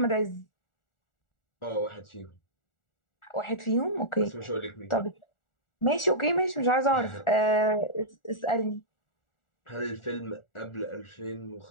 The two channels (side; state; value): right; late; 1.4 ms